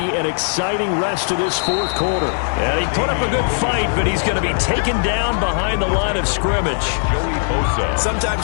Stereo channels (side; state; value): right; silent; 64 dB below the other